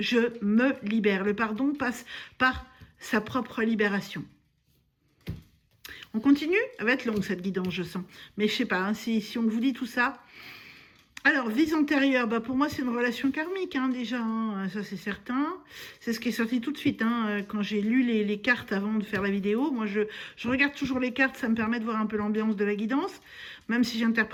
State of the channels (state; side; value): identical; both; correlation 1.00